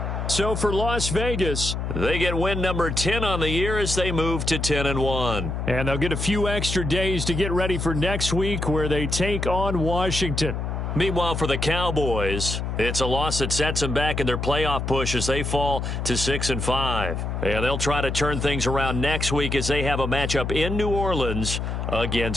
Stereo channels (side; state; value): left; noise; hum, 3 dB below the sound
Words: So for Las Vegas, they get win number 10 on the year as they move to 10-1. And they'll get a few extra days to get ready for next week, where they take on Washington. Meanwhile, for the Cowboys, it's a loss that sets them back in their playoff push as they fall to 6-5. And they'll try to turn things around next week as they have a matchup in New Orleans